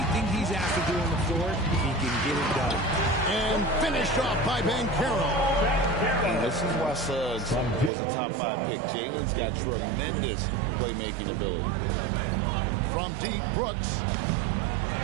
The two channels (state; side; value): drops out; left; at 7.9 s